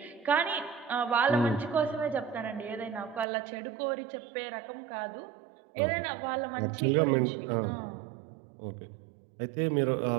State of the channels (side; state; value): left; drops out; at 3.2 s